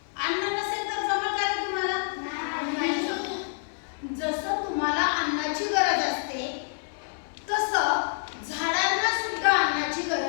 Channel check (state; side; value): silent; right; digital silence